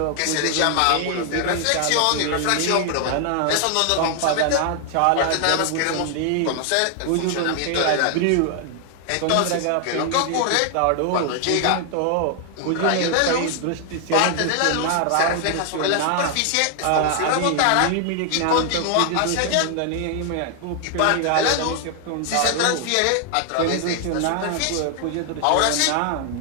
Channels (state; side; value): different; both; correlation 0.00